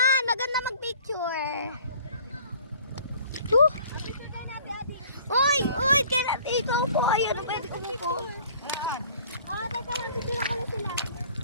maganda mag-picture. Uy, kaya dito po. Ayan, pwede umupo. Teka lang, picture ko lang sila.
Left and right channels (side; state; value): both; inverted; correlation -0.53